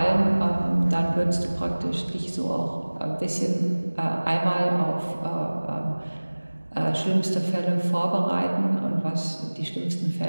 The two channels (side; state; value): both; inverted; correlation -1.00